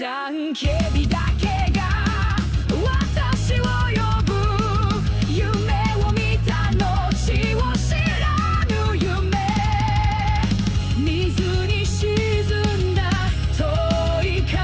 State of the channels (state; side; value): identical; both; correlation 1.00